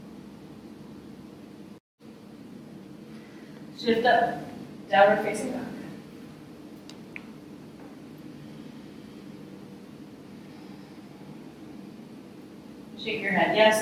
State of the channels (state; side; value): identical; both; correlation 1.00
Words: Shift up. Downward facing dog. Shake your head